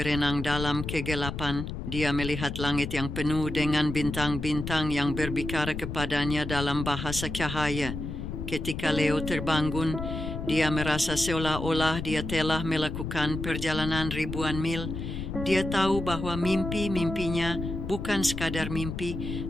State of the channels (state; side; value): noise; left; rumble, 6 dB below the sound